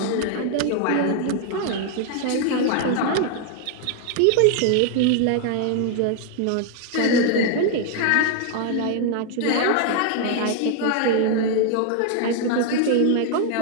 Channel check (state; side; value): different; both; correlation 0.00